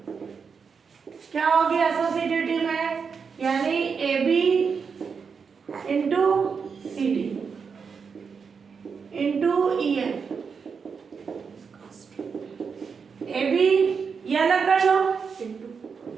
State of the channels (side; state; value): left; quieter; 5.8 dB